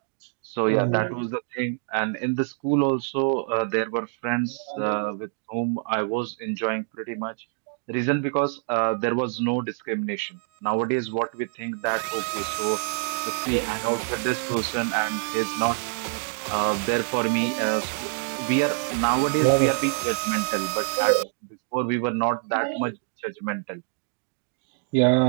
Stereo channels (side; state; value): left; silent; digital silence